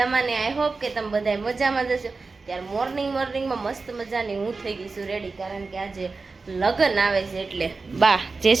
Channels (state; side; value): quieter; left; 4.1 dB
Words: ને? આઈ હોપ કે તમે બધા મજામાં જશો. ત્યારે મોર્નિંગમાં મસ્ત મજાની હું થઈ ગઈ છું રેડી, કારણ કે આજે લગ્ન આવે છે એટલે. બા જય